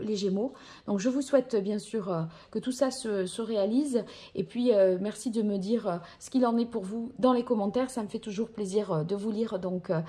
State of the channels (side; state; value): both; identical; correlation 1.00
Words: les Gémeaux. Donc je vous souhaite bien sûr que tout ça se réalise et puis merci de me dire ce qu'il en est pour vous dans les commentaires, ça me fait toujours plaisir de vous lire, donc